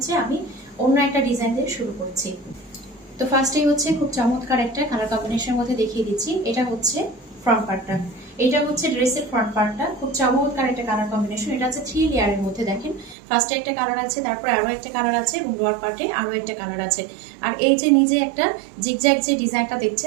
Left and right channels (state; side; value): drops out; left; at 13.2 s